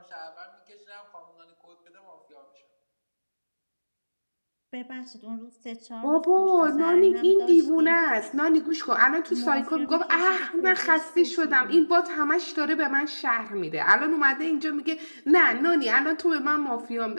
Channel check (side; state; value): both; inverted; correlation -1.00